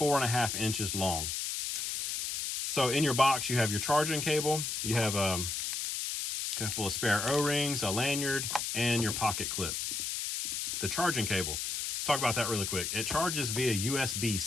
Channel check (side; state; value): left; noise; hiss, 2 dB below the sound